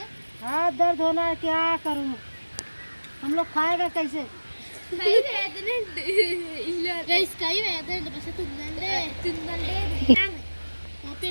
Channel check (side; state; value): both; inverted; correlation -1.00